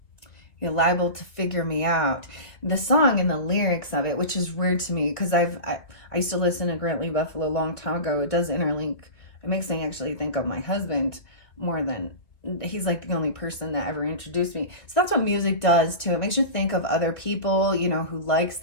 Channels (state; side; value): late; right; 2.2 ms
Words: You're Liable to Figure Me Out. The song and the lyrics of it, which is weird to me because I used to listen to Grant Lee Buffalo a long time ago. It does interlink. It makes me actually think of my husband more than he's like the only person that ever introduced me. So that's what music does too. It makes you think of other people, who likes